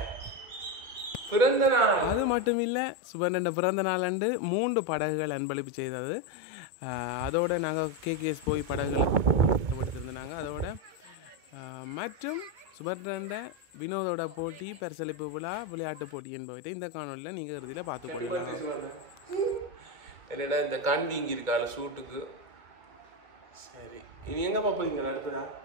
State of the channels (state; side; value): late; left; 2.2 ms